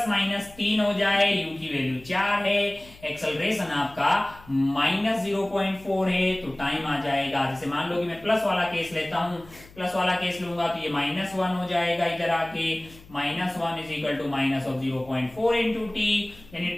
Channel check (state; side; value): noise; left; hum, 22 dB below the sound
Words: हो जाए, u की वैल्यू 4 है, एक्सेलरेशन आपका -0.4 है, तो टाइम आ जाएगा। जैसे मान लो कि मैं प्लस वाला केस लेता हूं, प्लस वाला केस लूंगा तो ये -1 हो जाएगा इधर आके, -1 = -0.4 × t, यानी